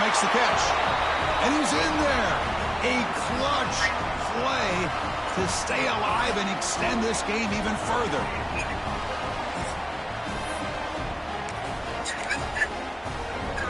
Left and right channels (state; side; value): identical; both; correlation 1.00